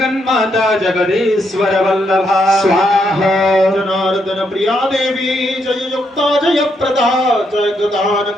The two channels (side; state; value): both; normal; correlation 0.77